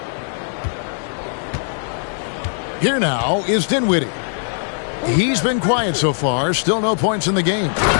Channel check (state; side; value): silent; right; digital silence